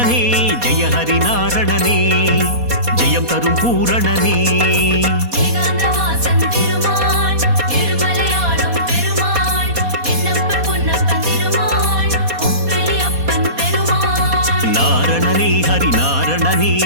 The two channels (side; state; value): left; late; 4.2 ms